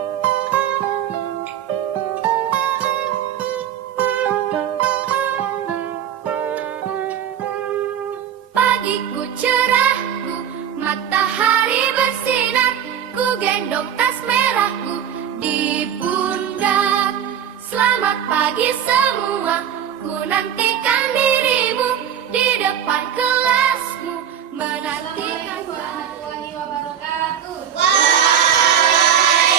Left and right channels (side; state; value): left; quieter; 9.2 dB